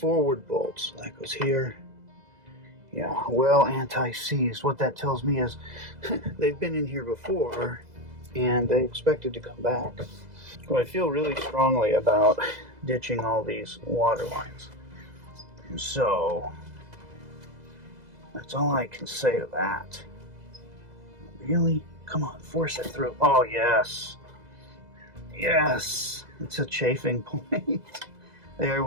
bolt. So that goes here. Yeah, well anti-seized. What that tells me is they've been in here before and they expected to come back. Well, I feel really strongly about ditching all these water lines. So that's all I can say to that. Really? Come on, force it through. Oh, yes. Yes. It's a chafing point. There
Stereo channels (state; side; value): late; left; 2.0 ms